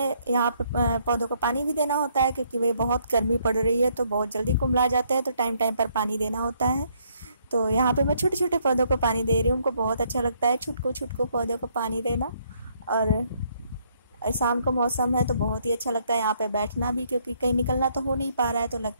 यहाँ पे पौधों को पानी भी देना होता है क्योंकि वे बहुत गर्मी पड़ रही है तो बहुत जल्दी कुम्हला जाते हैं, तो टाइम टाइम पर पानी देना होता है। तो यहाँ पे मैं छोटे छोटे पौधों को पानी दे रही हूँ, उनको बहुत अच्छा लगता है छुटको छुटको पौधों को पानी देना। और शाम का मौसम है तो बहुत ही अच्छा लगता है यहाँ पे बैठना भी, क्योंकि कहीं निकलना तो हो नहीं पा रहा है, तो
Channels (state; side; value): inverted; both; correlation -0.70